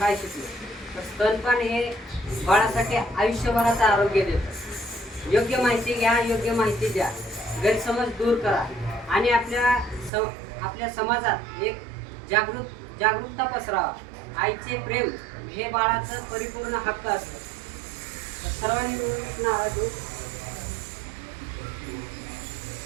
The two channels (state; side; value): drops out; left; at 10.1 s